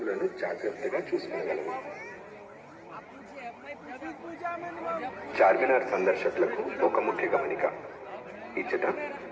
జాగ్రత్తగా చూసుకోగలరు. చార్మినార్ సందర్శకులకు ఒక ముఖ్య గమనిక. ఇచ్చట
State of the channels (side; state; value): both; identical; correlation 1.00